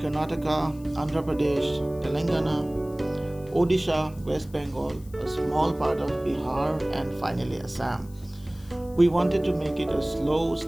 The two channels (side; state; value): left; noise; hiss, 25 dB below the sound